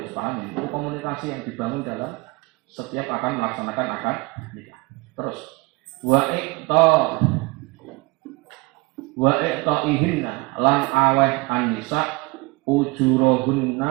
paham itu komunikasi yang dibangun dalam setiap akan melaksanakan akad nikah. Terus wa ihinna lan aweh an-nisa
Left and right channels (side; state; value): left; quieter; 24.4 dB